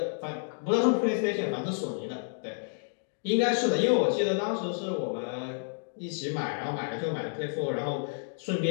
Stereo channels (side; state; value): right; silent; digital silence